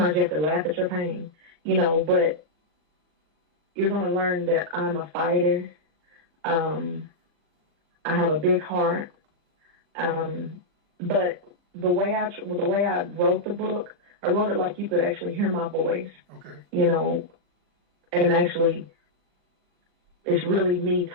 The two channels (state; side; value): late; left; 40 ms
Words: you have to laugh at your pain. You know, but you're going to learn that I'm a fighter. I have a big heart. But the way I wrote the book, I wrote it like you could actually hear my voice. Okay. You know, and actually, it's really me